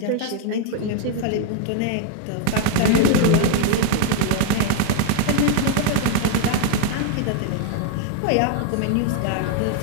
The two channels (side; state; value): both; different; correlation 0.01